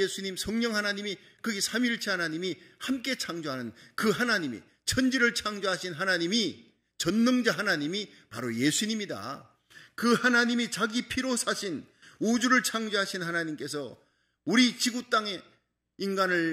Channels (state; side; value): identical; both; correlation 1.00